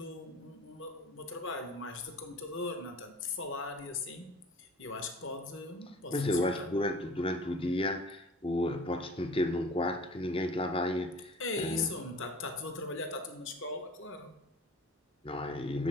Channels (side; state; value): both; normal; correlation 0.44